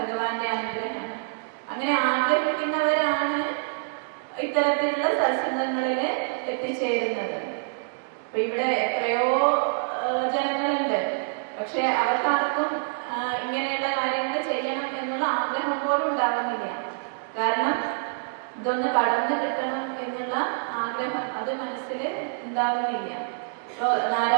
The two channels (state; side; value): silent; left; digital silence